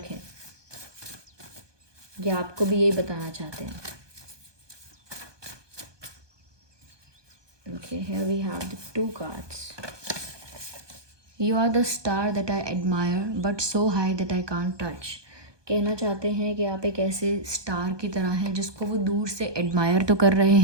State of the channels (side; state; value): left; late; 1.2 ms